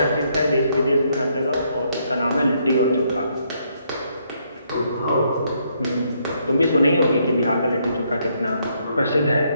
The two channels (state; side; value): inverted; both; correlation -0.73